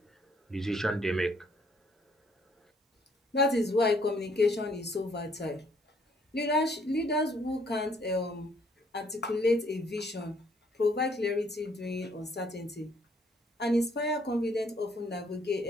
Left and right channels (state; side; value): normal; both; correlation 0.65